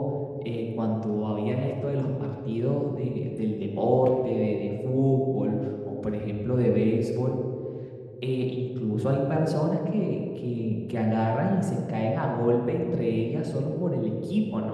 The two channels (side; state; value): both; identical; correlation 1.00